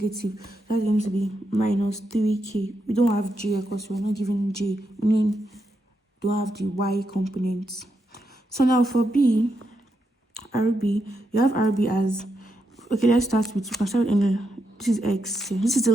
That's going to be minus 3K. We don't have J because we're not given J, meaning don't have the Y components. So now for B, RB, you have RB as, okay, let's start with, this is X here. This is the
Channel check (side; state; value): both; normal; correlation 0.83